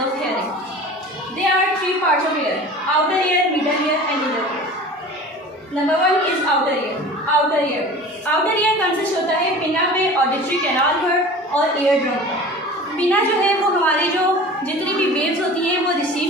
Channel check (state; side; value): normal; both; correlation 0.39